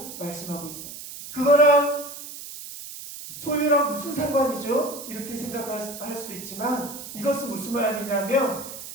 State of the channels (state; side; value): noise; right; hiss, 11 dB below the sound